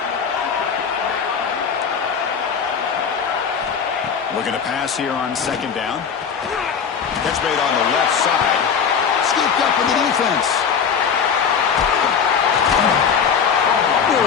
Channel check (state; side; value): quieter; right; 6.8 dB